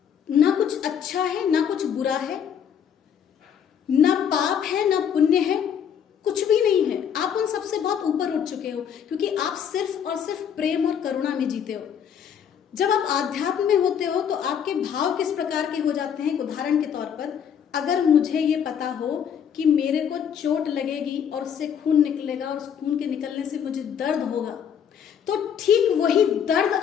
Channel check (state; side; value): quieter; right; 8.2 dB